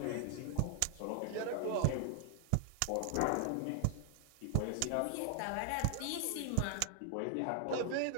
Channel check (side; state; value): both; different; correlation 0.00